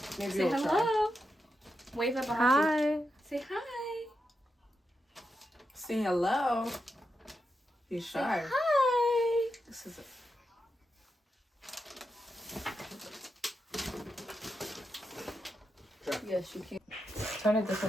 Maybe Say hello. Try. Wave at behind Hi. you. Say hi. Say hello. He's Say shy. hi. This is it. Yes, you can. Turn it this way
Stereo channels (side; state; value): both; normal; correlation 0.87